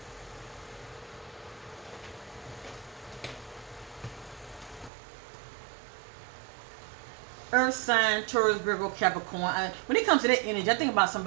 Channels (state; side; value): drops out; left; at 4.9 s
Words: Earth sign, Taurus, Virgo, Capricorn. When it comes to that energy, I think about